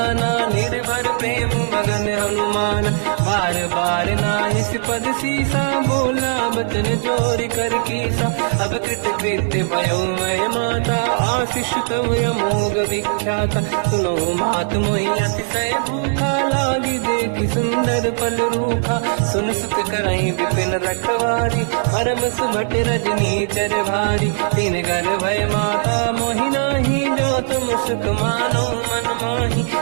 निर्भर प्रेम मगन हनुमान। बार बार नाहिस पद सीसा, बोला बचन जोरि कर कीसा। अब कृत कृत्य भयो मैं माता, आशीष तव अमोघ विख्याता। सुनो मात मोहि अतिशय भूखा, लागी देखि सुंदर फल रूखा। सुन सुत करहि विपिन रखवारी, परम सुभट रजनी चर भारी। तीन घर भय माता मोहि नाही, जो तुम सुख मानो मन माही।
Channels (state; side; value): silent; left; digital silence